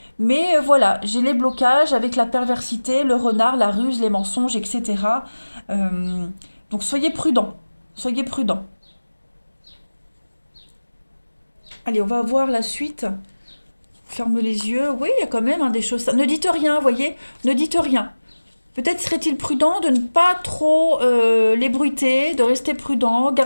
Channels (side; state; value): both; inverted; correlation -1.00